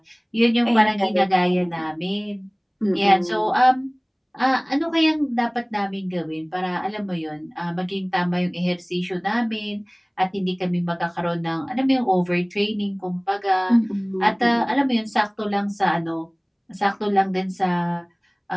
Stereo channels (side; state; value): both; identical; correlation 1.00